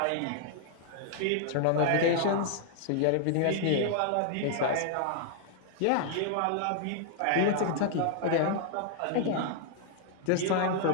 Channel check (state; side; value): different; both; correlation 0.00